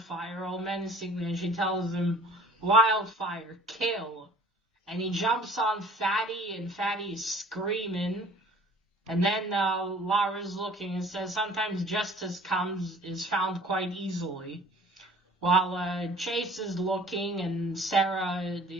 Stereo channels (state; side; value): normal; both; correlation 0.49